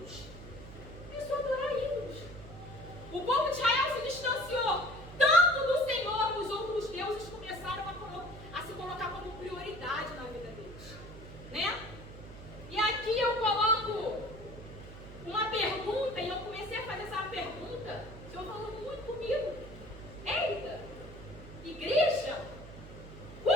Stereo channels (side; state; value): right; noise; hum, 15 dB below the sound